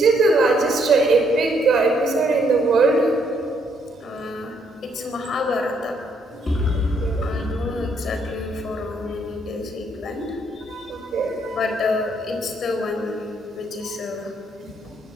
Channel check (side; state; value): both; normal; correlation 0.71